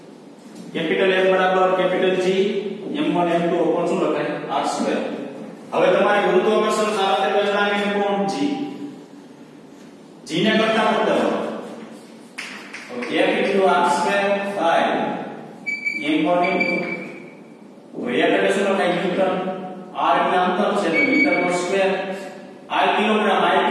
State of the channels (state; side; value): identical; both; correlation 1.00